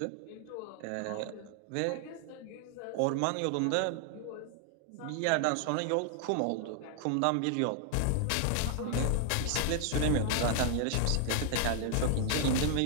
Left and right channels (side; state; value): both; different; correlation 0.00